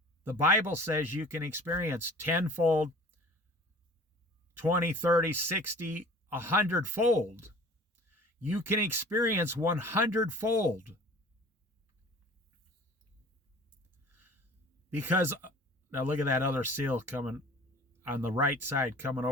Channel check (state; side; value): normal; both; correlation 0.46